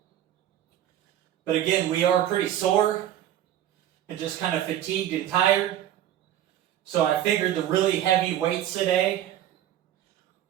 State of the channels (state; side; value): quieter; left; 11.8 dB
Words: But again, we are pretty sore and just kind of fatigued and tired. So I figured the really heavy weights today